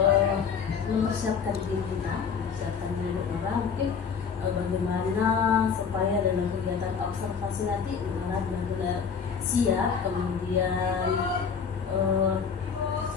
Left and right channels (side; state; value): right; quieter; 6.3 dB